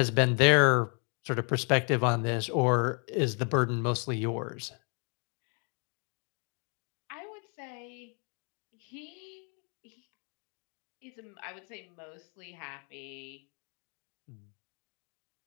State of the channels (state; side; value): quieter; right; 38.2 dB